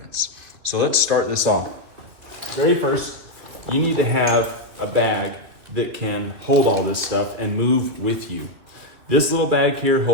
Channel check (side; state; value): left; late; 2.8 ms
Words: So let's start this off. Very first, you need to have a bag that can hold all this stuff and move with you. This little bag here